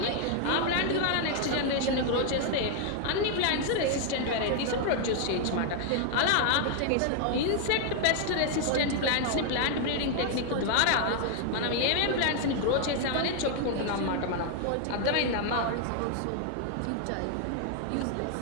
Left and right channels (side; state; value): both; different; correlation 0.00